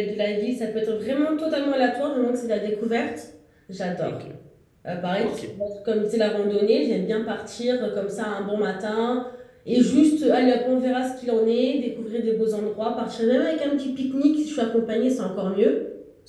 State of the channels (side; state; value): both; identical; correlation 1.00